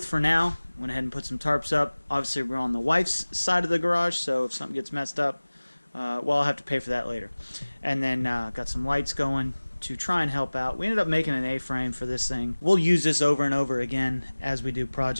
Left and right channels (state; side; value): inverted; both; correlation -1.00